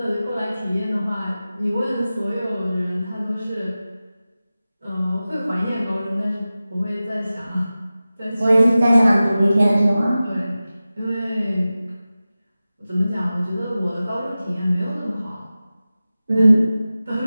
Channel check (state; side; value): inverted; both; correlation -0.96